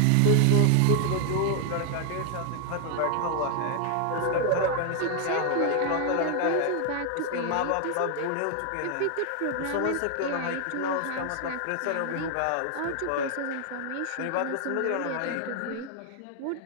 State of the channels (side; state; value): both; different; correlation 0.00